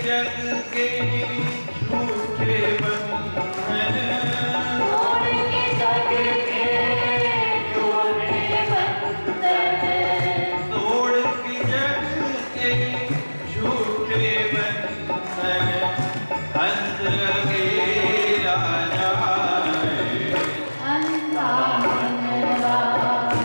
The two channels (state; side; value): inverted; both; correlation -1.00